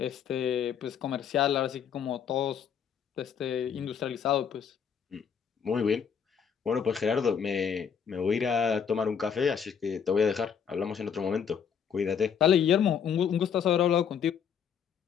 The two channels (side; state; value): right; quieter; 7.4 dB